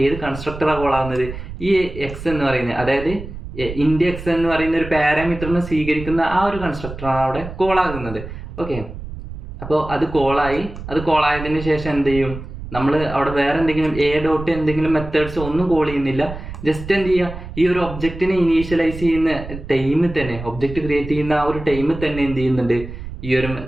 ഏത് കൺസ്ട്രക്ടറാണ് കോൾ ആവുന്നത്, ഈ എക്സ് എന്ന് പറയുന്നത്, അതായത് ഇൻഡ് എക്സ് എന്ന് പറയുന്ന ഒരു പാരാമീറ്ററിനെ സ്വീകരിക്കുന്ന ആ ഒരു കൺസ്ട്രക്ടറാണ് അവിടെ കോൾ ആകുന്നത്. ഓക്കെ, അപ്പോൾ അത് കോളായതിനു ശേഷം എന്ത് ചെയ്യും, നമ്മൾ അവിടെ വേറെ എന്തെങ്കിലും എ ഡോട്ട് എന്തെങ്കിലും മെത്തേഡ്സ് ഒന്നും കോൾ ചെയ്യുന്നില്ല. ജസ്റ്റ് എന്ത് ചെയ്യുക, ഈ ഒരു ഒബ്ജക്റ്റിനെ ഇനീഷ്യലൈസ് ചെയ്യുന്ന ടൈമിൽ തന്നെ, ഒബ്ജക്റ്റ് ക്രിയേറ്റ് ചെയ്യുന്ന ആ ഒരു ടൈമിൽ തന്നെ എന്ത് ചെയ്യുന്നുണ്ട്, ഈ ഒരു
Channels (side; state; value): right; noise; rumble, 11 dB below the sound